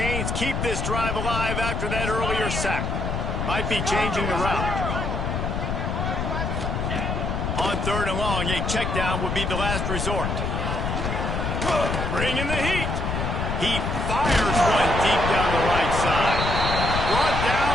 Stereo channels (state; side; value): noise; left; rumble, 2 dB below the sound